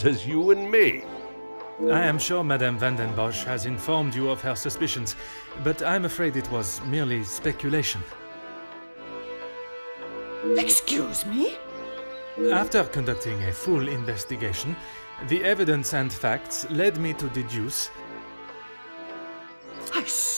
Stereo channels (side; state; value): both; inverted; correlation -1.00